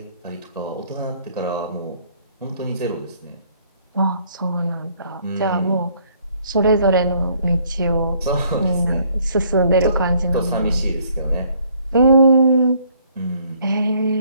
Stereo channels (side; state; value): both; inverted; correlation -0.64